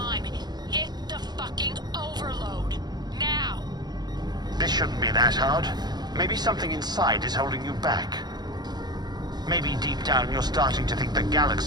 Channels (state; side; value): late; left; 0.20 ms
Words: Hit the fucking overload. Now! This shouldn't be that hard. Maybe something inside is holding you back. Maybe deep down you're starting to think the